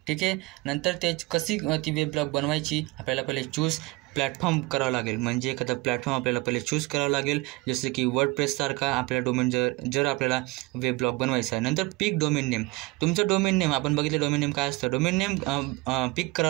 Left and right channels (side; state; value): left; quieter; 22.8 dB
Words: ठीक आहे, नंतर कशी ती वेब ब्लॉग बनवायची, आपल्याला पहिले चूज प्लॅटफॉर्म करावं लागेल, म्हणजे एखादा प्लॅटफॉर्म आपल्याला पहिले चूज करावं लागेल, जसं की वर्डप्रेससारखा आपल्या डोमेन जर आपल्याला वेब ब्लॉग बनवायचा आहे. नंतर पिक डोमेन नेम, तुमचं डोमेन नेम आपण बघितलं डोमेन नेम काय असतं, डोमेन नेम पिक